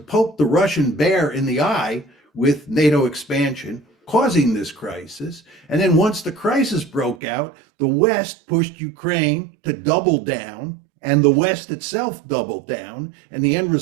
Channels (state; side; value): drops out; left; at 7.2 s